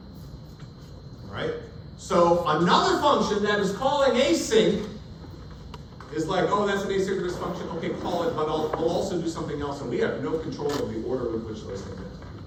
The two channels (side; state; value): both; identical; correlation 1.00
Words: Right? So another function that is calling async is like, oh, that's an asynchronous function, okay, call it, but I'll also do something else, and we have no control of the order with which those things